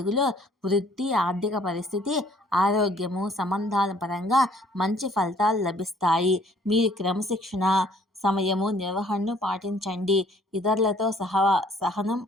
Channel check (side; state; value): both; normal; correlation 0.60